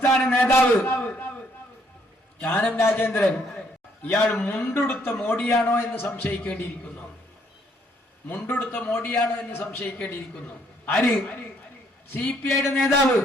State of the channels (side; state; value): both; normal; correlation 0.68